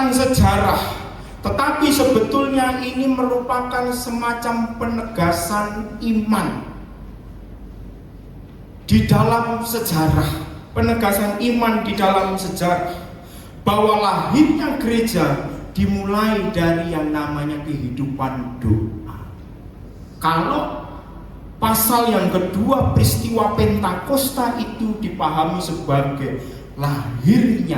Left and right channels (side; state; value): both; identical; correlation 1.00